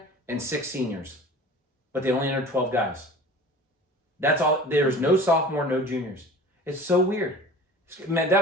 and 6 seniors, but they only entered 12 guys. That's all. There's no sophomore, no juniors. It's so weird. Man,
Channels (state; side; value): normal; both; correlation 0.41